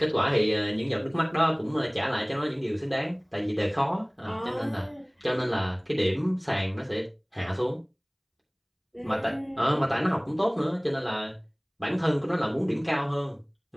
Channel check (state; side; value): identical; both; correlation 1.00